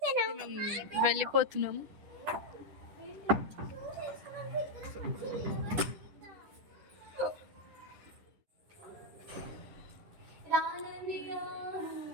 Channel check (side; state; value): left; late; 10 ms